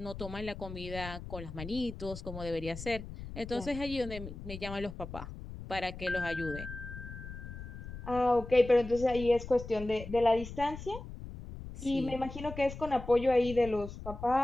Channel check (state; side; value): noise; left; rumble, 11 dB below the sound